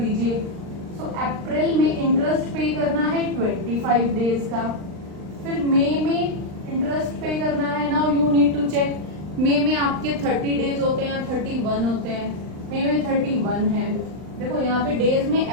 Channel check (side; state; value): left; late; 39 ms